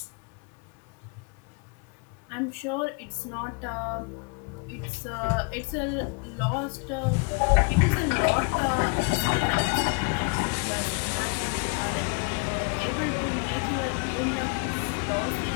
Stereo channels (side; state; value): right; quieter; 34.5 dB